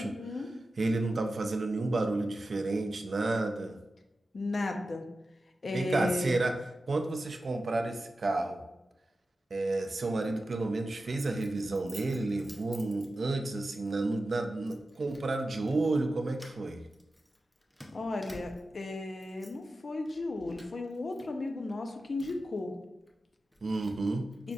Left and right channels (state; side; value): normal; both; correlation 0.93